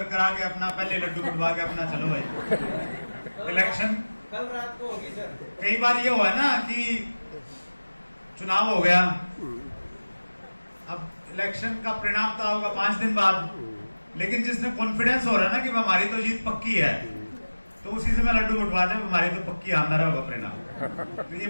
आके अपना पहले लड्डू कटवा के अपना चलो भाई। इलेक्शन कल रात को होगी सर। कई बार ये हुआ ना कि चुनाव हो गया, अब इलेक्शन का परिणाम तो होगा 5 दिन बाद, लेकिन जिसने कॉन्फिडेंस हो रहा है ना कि हमारी तो जीत पक्की है, तो उसी से मैं लड्डू उठवा दे, हमारी तो पक्की आंदर होगा परिणाम। तो ये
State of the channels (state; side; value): inverted; both; correlation -1.00